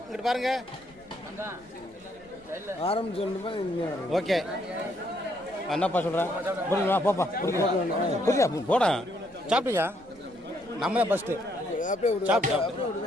ஓகே என்னப்பா சொல்கிறேன் புரியுமா? போப்பா புரியா போடா. சாப்பிட்டியா? நம்ம தான் ஃபஸ்ட்டு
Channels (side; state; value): left; noise; rumble, 28 dB below the sound